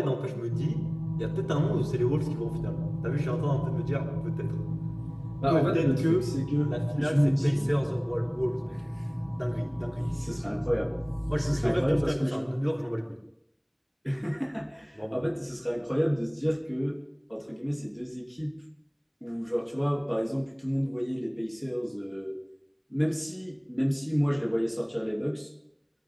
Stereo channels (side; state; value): both; identical; correlation 1.00